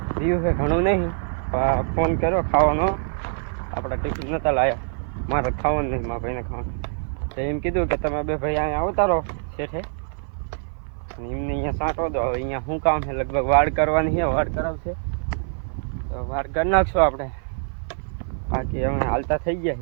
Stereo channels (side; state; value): left; silent; 56 dB below the other